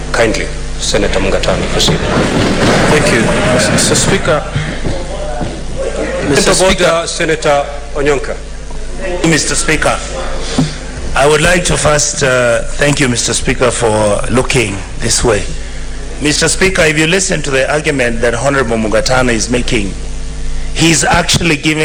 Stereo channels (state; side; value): identical; both; correlation 1.00